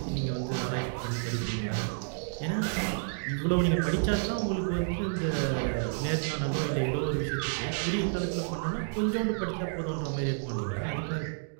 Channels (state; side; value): silent; left; digital silence